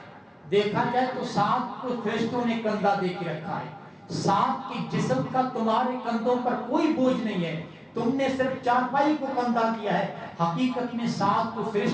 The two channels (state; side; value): identical; both; correlation 1.00